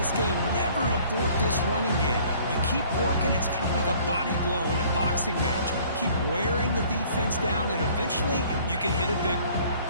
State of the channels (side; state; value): both; inverted; correlation -0.55